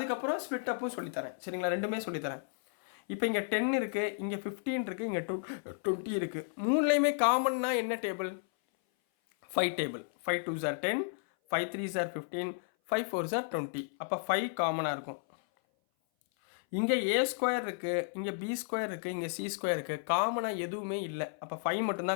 ஸ்ப்ளிட் அப்பும் சொல்லித்தரேன். சரிங்களா? ரெண்டுமே சொல்லித்தரேன். இப்போ இங்கே 10 இருக்குது, இங்கே 15 இருக்குது, இங்கே 20 இருக்குது. மூணுலேயுமே காமன்னா என்ன table? 5 table. 5 2s are 10, 5 3s are 15, 5 4s are 20. அப்போ 5 காமனாக இருக்கும். இங்கே a² இருக்குது, இங்கே b² இருக்குது, இங்கே c² இருக்குது. காமனாக எதுவுமே இல்லை. அப்போ 5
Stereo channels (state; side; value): silent; right; 56 dB below the other